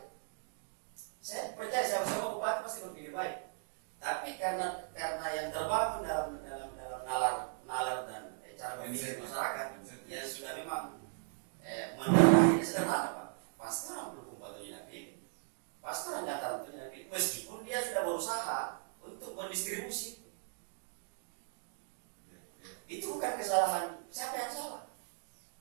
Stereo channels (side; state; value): left; silent; digital silence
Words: Saya percaya sama bupati pasti berpikir baik. Tapi karena yang terbangun dalam nalar dan cara berpikir masyarakat yang sudah memang mendarahnya sederhana Pak. Pasti orang Bulukumba itu yakin. Pasti orang Dataran itu yakin. Meskipun dia sudah berusaha untuk mendistribusi bukan kesalahan siapa yang salah.